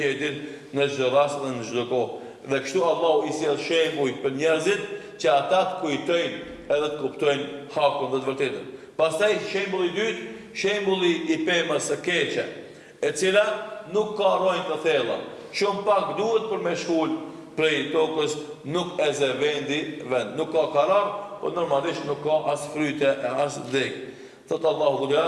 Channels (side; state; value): both; identical; correlation 1.00